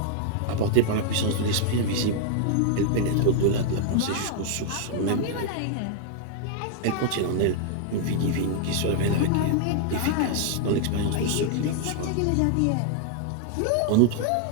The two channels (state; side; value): different; both; correlation 0.00